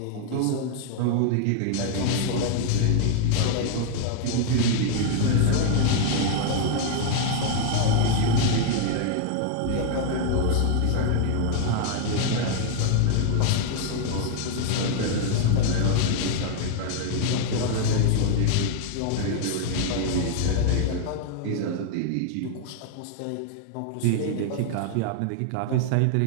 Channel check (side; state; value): both; different; correlation 0.00